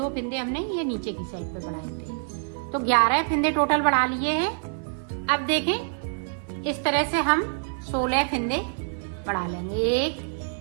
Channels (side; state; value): left; silent; digital silence